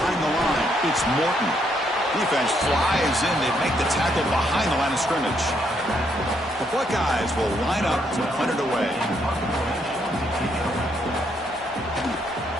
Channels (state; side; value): normal; both; correlation 0.74